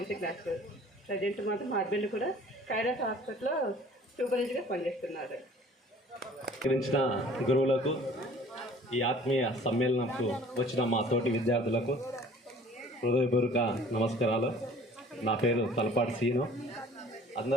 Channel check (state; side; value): normal; both; correlation 0.50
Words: క్లాస్. ప్రజెంట్ మాత్రం మా హస్బెండ్ కూడా కైరాస్ హాస్పిటల్లో సూపర్వైజర్గా పనిచేస్తున్నారు. గురించిన గురువులకు, ఈ ఆత్మీయ సమ్మేళనంకు వచ్చిన మా తోటి విద్యార్థులకు హృదయపూర్వక నమస్కారాలు. నా పేరు తలపాటి సీను.